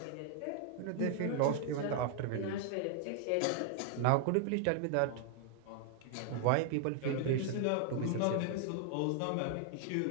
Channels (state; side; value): different; both; correlation 0.00